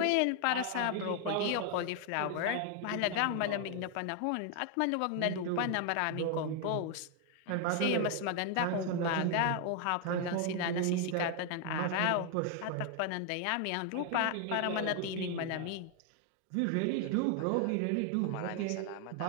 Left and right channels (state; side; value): different; both; correlation 0.00